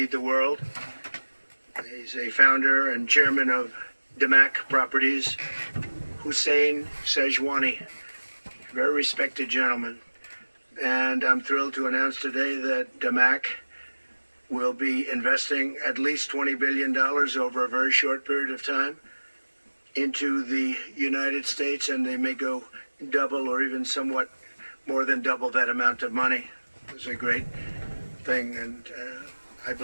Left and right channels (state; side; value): inverted; both; correlation -1.00